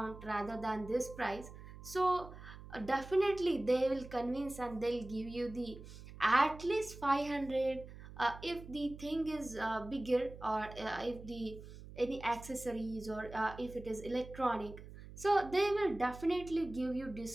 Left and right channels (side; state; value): right; noise; hum, 15 dB below the sound